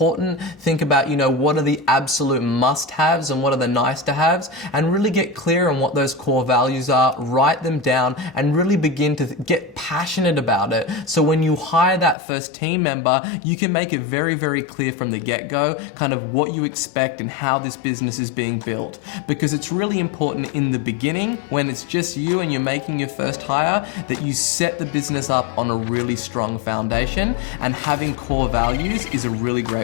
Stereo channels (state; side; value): drops out; right; at 12.2 s